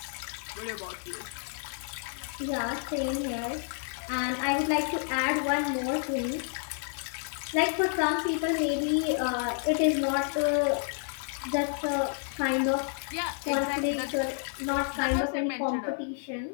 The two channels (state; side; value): silent; right; 58 dB below the other